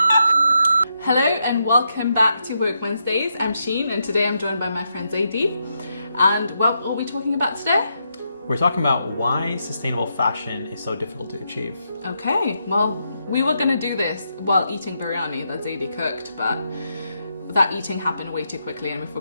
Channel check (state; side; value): inverted; both; correlation -0.81